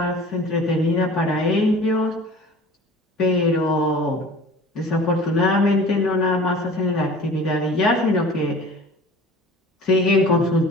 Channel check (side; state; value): both; normal; correlation 0.43